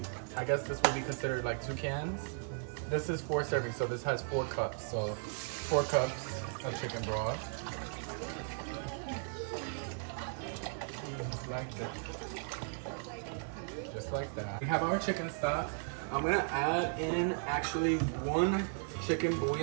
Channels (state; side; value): silent; left; 54 dB below the other